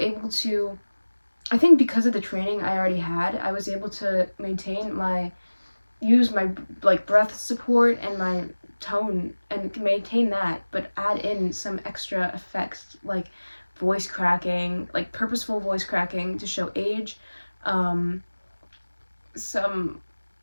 to, I think because of the training I already had, I was able to use my like breath support and my tone and maintain that, but add in some extra effects like voice cracking, like purposeful voice cracking to show age, some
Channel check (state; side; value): inverted; both; correlation -1.00